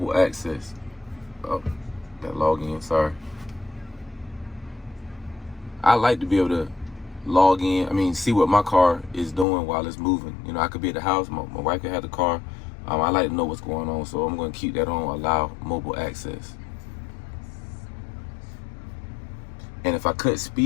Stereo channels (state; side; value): drops out; right; at 9.5 s